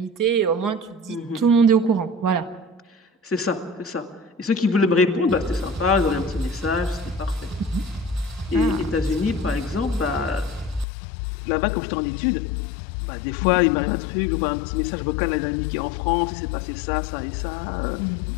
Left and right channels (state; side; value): drops out; right; at 10.9 s